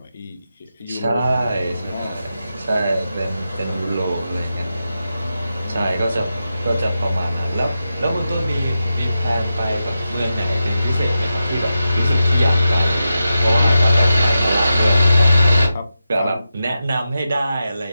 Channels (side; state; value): both; inverted; correlation -0.90